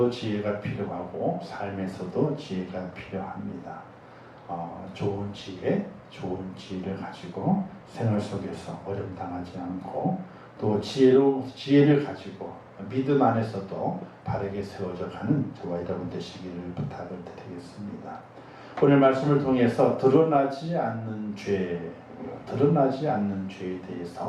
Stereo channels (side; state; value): both; identical; correlation 1.00